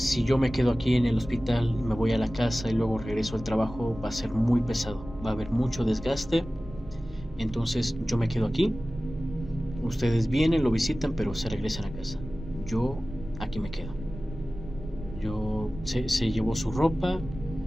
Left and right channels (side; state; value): both; normal; correlation 0.96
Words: yo me quedo aquí en el hospital y me voy a la casa y luego regreso al trabajo, va a ser muy pesado, va a haber mucho desgaste, entonces yo me quedo aquí, ustedes vienen, lo visitan, pero se regresan a casa, yo aquí me quedo. Se llevó su ropa,